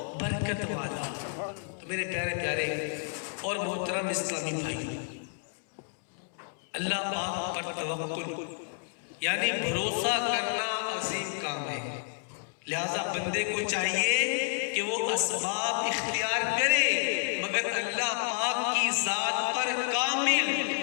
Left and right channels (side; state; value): right; silent; digital silence